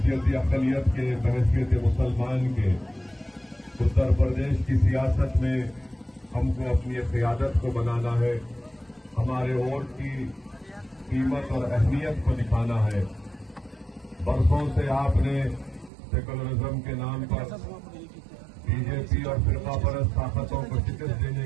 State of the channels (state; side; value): drops out; left; at 15.9 s